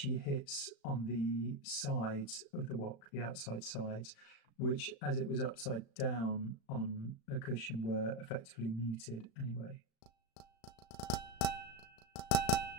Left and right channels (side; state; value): right; late; 35 ms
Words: hits on the sides of the wok, the outside sides, which, as it was upside down on a cushion, were effectively muted anyway.